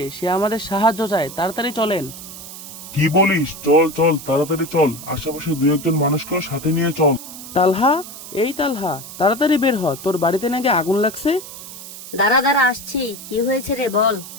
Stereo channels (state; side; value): noise; right; hiss, 13 dB below the sound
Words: সে আমাদের সাহায্য চায়, তাড়াতাড়ি চলেন। কি বলিস? চল চল, তাড়াতাড়ি চল, আশেপাশে দু একজন মানুষকেও সাথে নিয়ে চল। তালহা, এই তালহা, তাড়াতাড়ি বের হ, তোর বাড়িতে নাকি আগুন লাগছে। দাঁড়া দাঁড়া, আসছি। কি হয়েছে রে, বল।